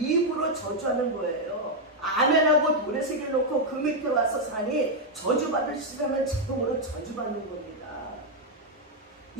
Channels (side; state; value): both; normal; correlation 0.00